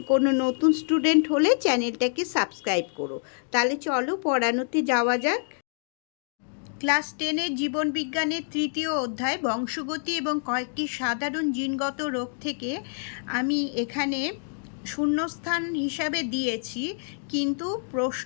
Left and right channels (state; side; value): silent; right; digital silence